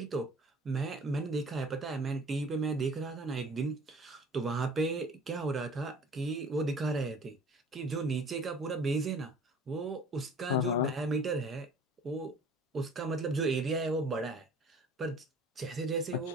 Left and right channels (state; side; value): normal; both; correlation 0.48